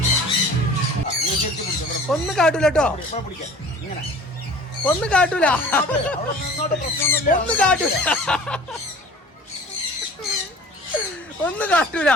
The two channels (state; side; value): normal; both; correlation 0.44